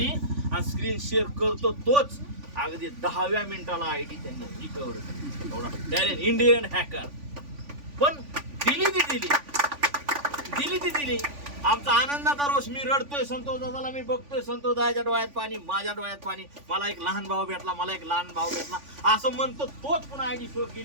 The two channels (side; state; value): left; late; 3.5 ms